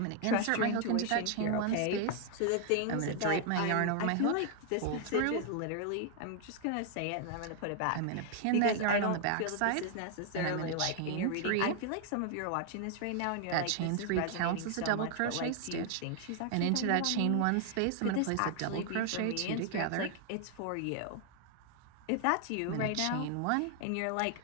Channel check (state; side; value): different; both; correlation 0.00